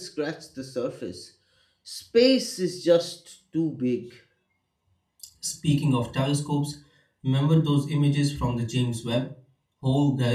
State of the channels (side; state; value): both; identical; correlation 1.00